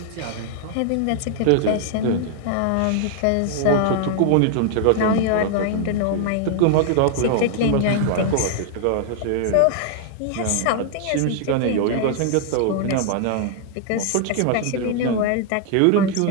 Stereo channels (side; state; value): both; different; correlation 0.00